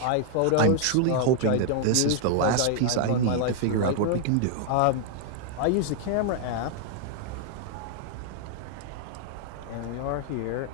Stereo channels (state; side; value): different; both; correlation 0.00